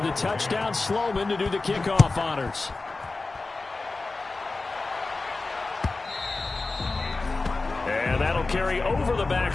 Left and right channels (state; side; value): quieter; right; 3.5 dB